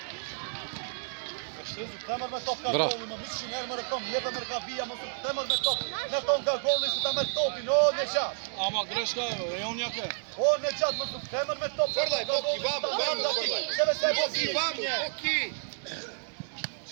Temër me top ka Bra. golli, më mishin herë më rëkom, lepe më rëka vija, më su temër me top, në ton ka golli, su ta merë topin, o në qatë. Ama greška je, rejon jake. O në qatë, më su temër me top. Fërdaj, Boki, vamo, Boki, vamo, Boki!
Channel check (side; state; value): left; silent; 58 dB below the other